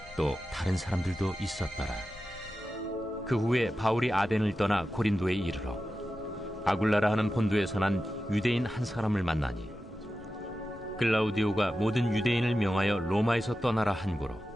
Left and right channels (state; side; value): noise; left; rumble, 20 dB below the sound